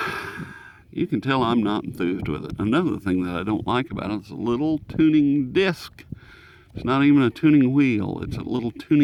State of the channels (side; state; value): both; identical; correlation 1.00